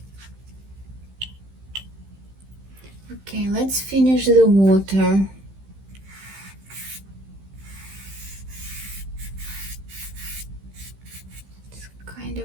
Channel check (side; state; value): left; late; 15 ms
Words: Okay, let's finish the water. It's kind of